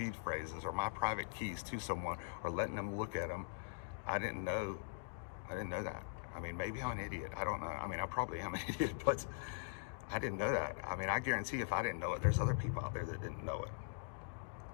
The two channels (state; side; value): silent; right; digital silence